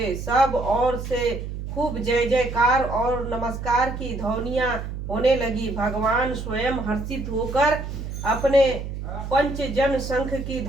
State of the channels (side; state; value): right; noise; hum, 7 dB below the sound